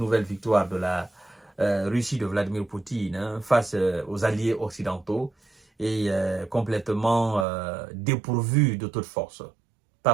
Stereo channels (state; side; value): drops out; left; at 7.5 s